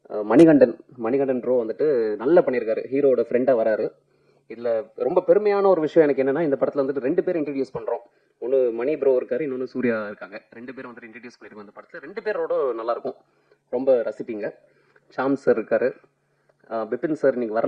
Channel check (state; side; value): identical; both; correlation 1.00